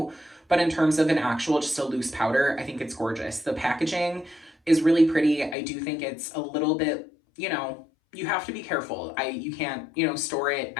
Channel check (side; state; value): right; drops out; at 5.6 s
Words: But in terms of an actual, just a loose powder, I think it's gorgeous. The packaging is really pretty. I do think it's a little bit, you know, you have to be careful. You can't, you know, store it